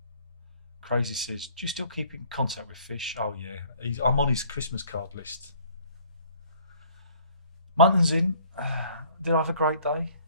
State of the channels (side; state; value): both; inverted; correlation -0.56